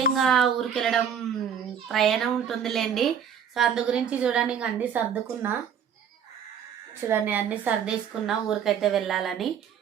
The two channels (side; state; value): left; quieter; 8.0 dB